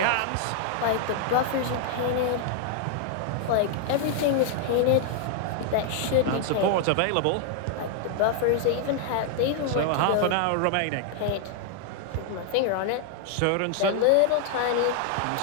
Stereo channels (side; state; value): both; different; correlation 0.00